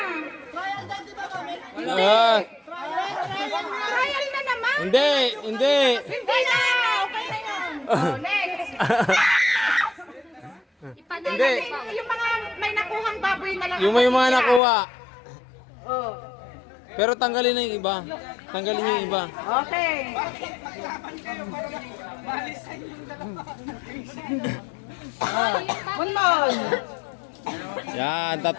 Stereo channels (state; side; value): drops out; right; at 14.6 s